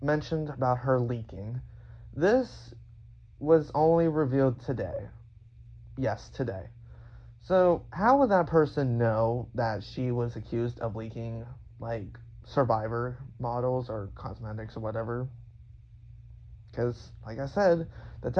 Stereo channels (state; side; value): identical; both; correlation 1.00